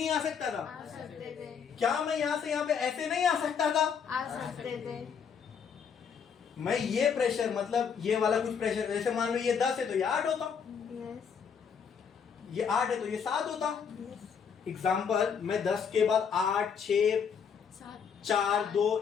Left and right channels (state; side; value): quieter; right; 6.8 dB